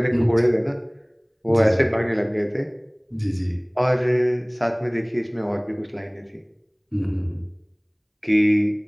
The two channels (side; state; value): both; identical; correlation 1.00